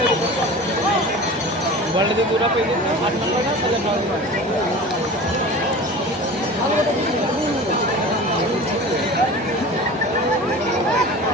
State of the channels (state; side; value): normal; both; correlation 0.36